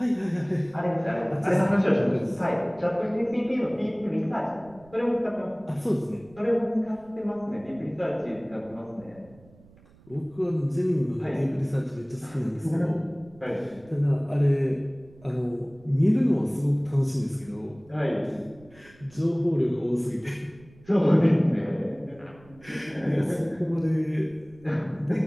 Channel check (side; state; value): right; noise; rumble, 25 dB below the sound